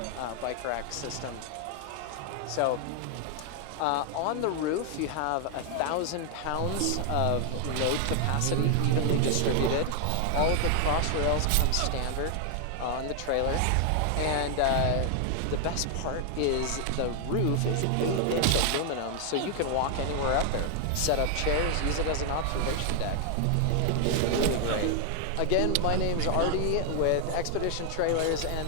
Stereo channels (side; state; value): both; different; correlation 0.00